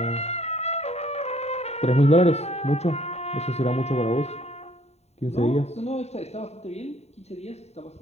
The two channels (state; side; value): late; right; 0.31 ms